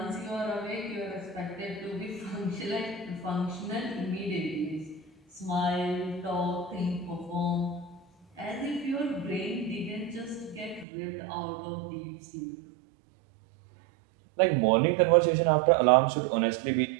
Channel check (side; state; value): left; drops out; at 10.9 s